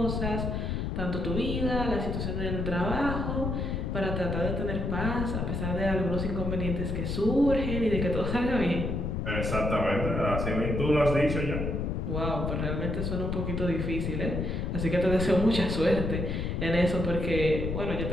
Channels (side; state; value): left; noise; rumble, 1 dB below the sound